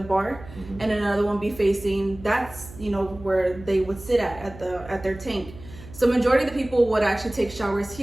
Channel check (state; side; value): noise; right; hum, 17 dB below the sound